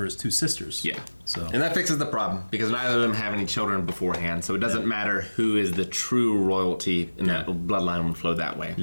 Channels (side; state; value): both; inverted; correlation -1.00